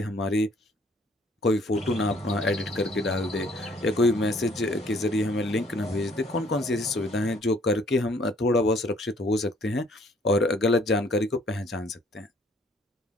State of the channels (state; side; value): normal; both; correlation 0.61